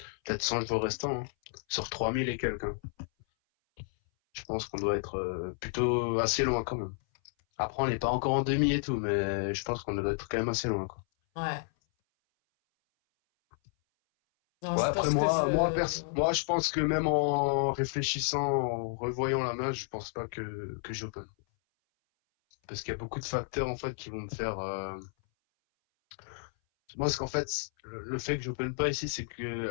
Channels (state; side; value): silent; right; 57 dB below the other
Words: Peut-être 100 jours restants, hein. Sur 3000 et quelques, hein. Je pense qu'on doit être plutôt assez loin quand même. Après, on n'est pas encore en demi et tout, mais je pense qu'on doit être quand même assez loin, quoi. Ouais. Non, Ouais, je après pense que moi, je pense que même en réfléchissant, en revoyant la main, je pense pas que j'open. Parce qu'il y a beaucoup de facteurs en fait qui vont me faire. Moi, ce qu'en fait, le fait que j'open pas ici, c'est